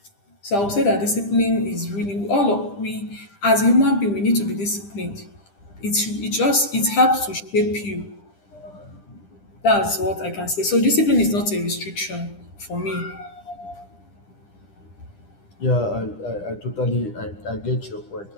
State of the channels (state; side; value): late; right; 10 ms